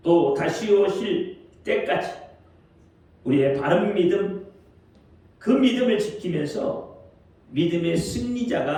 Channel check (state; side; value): identical; both; correlation 1.00